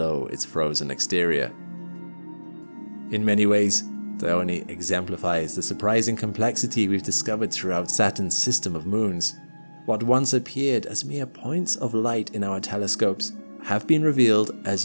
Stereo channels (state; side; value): inverted; both; correlation -1.00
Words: its frozen exterior. In many ways, Dione exemplifies the surprising complexity we've discovered throughout Saturn's system of moons. What once appeared as mere points of light in our telescopes have been revealed